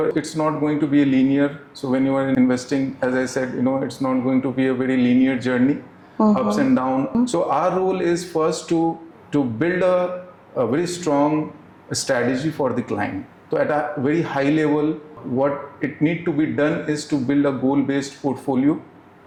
it's not going to be a linear, so when you are investing, as I said, it's not going to be a very linear journey, ups and downs. So our role is first to build a very strong strategy for the client. So at a very high level, what it need to be done is to build a goal-based portfolio.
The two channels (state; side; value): identical; both; correlation 1.00